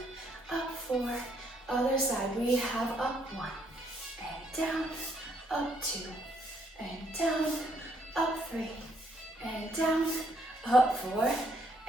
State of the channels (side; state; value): both; normal; correlation 0.70